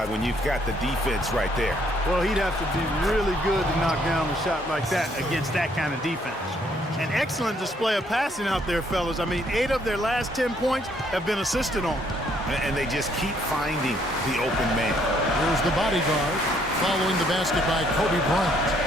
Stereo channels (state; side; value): normal; both; correlation 0.67